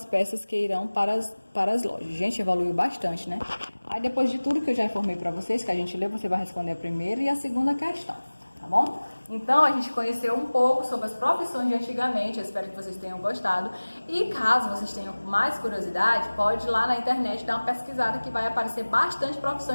peças que irão para as lojas. Gente, evoluiu bastante, né? Aí, depois de tudo que eu já informei para vocês, que a gente leu, você vai responder a primeira e a segunda questão, tá bom? Então, a gente conheceu um pouco sobre as profissões de antigamente, eu espero que vocês tenham gostado. E caso vocês tenham mais curiosidade, pode ir lá na internet dar uma pesquisada que vai aparecer bastante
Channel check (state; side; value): inverted; both; correlation -1.00